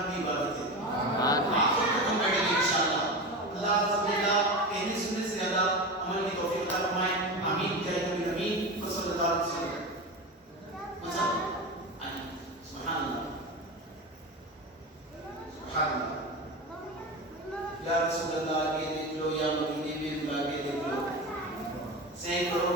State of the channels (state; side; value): normal; both; correlation 0.24